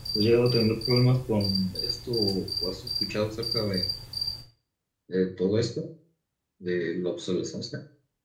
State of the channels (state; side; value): identical; both; correlation 1.00